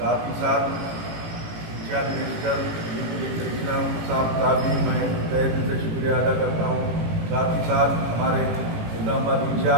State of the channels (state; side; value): late; left; 18 ms